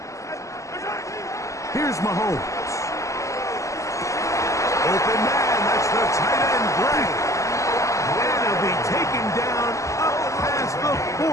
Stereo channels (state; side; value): late; right; 0.15 ms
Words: Here's Mahomes. Open man, that's the tight end, Gray. And he'll be taken down up past the